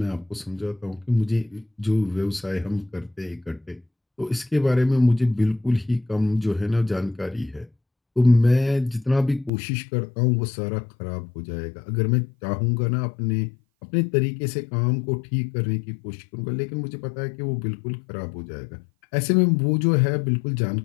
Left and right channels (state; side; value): drops out; right; at 9.5 s